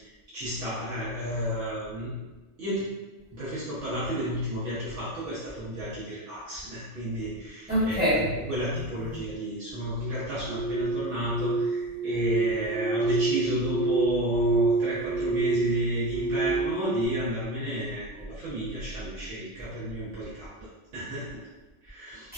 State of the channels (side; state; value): both; normal; correlation 0.24